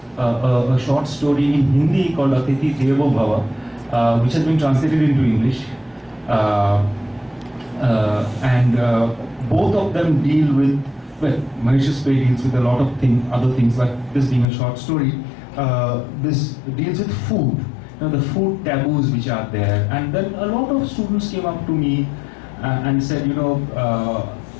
a short story in Hindi called Atithi Devo Bhava, which has been translated into English. Both of them deal with, well, Mahesh's play deals with a lot of other things, like this being a short story. This deals with food, the food taboos which are there. And then a lot of students came up to me and said,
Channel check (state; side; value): drops out; right; at 14.5 s